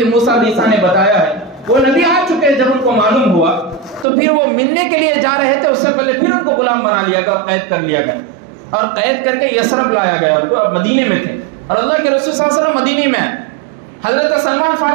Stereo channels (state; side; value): drops out; left; at 4.0 s